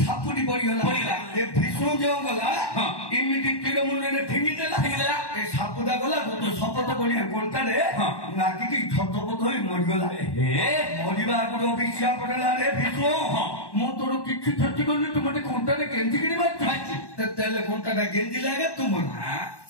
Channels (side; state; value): right; late; 1.1 ms